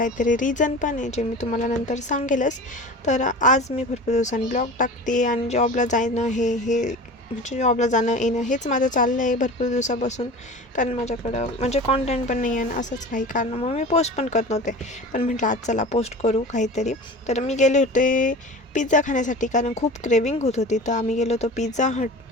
रिझन पण आहे जे मी तुम्हाला नंतर सांगेलच. तर आज मी भरपूर दिवसांनी ब्लॉग टाकते आणि जॉबला जाणं हे म्हणजे जॉबला जाणं येणं हेच माझं चाललं आहे भरपूर दिवसापासून. कारण माझ्याकडं म्हणजे कॉन्टेंट पण नाही आहे आणि असंच काही कारणामुळे मी पोस्ट पण करत नव्हते. पण म्हटलं आज चला पोस्ट करू काहीतरी. तर मी गेले होते पिझ्झा खाण्यासाठी, कारण खूप क्रेविंग होत होती. तर आम्ही गेलो होतो पिझ्झा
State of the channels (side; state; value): both; normal; correlation 0.35